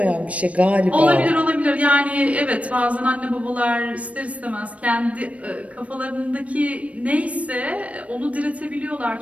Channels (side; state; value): left; late; 0.065 ms